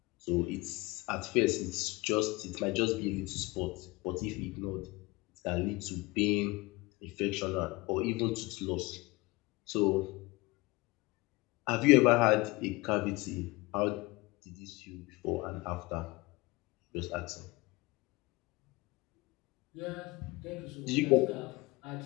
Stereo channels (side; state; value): right; quieter; 22.7 dB